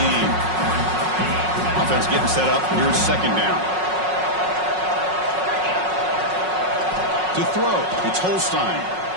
Offense getting set up. Here's 2nd down. To throw, it's Holstein.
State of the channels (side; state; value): left; late; 5.4 ms